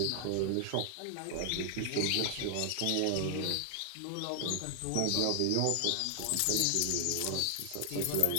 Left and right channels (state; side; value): different; both; correlation 0.00